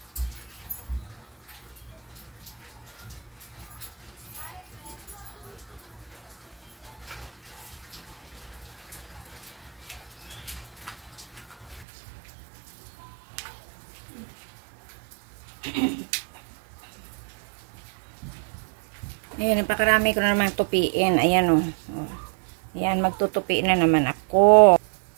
Ayan, napakarami ko na naman tupiin. Ayan o. Ayan, magtutupi na naman ako.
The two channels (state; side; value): drops out; left; at 11.9 s